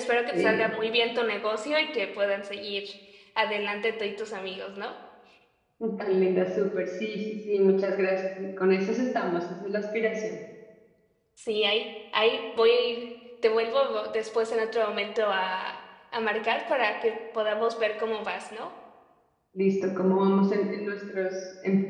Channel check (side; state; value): both; identical; correlation 1.00